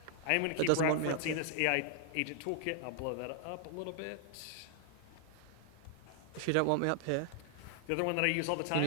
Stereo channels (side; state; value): both; different; correlation 0.00